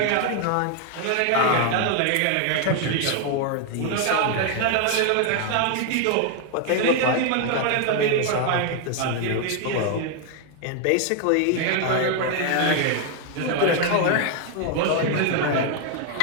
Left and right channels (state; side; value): different; both; correlation 0.00